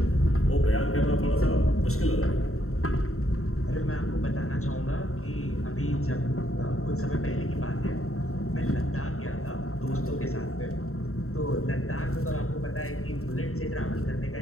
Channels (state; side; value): late; right; 0.63 ms